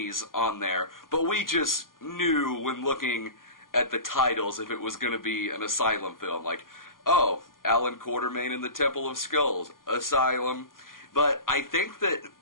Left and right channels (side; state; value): right; late; 0.91 ms